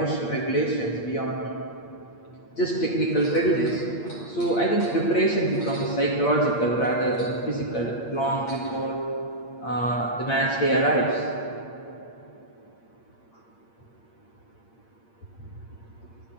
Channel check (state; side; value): late; right; 8.6 ms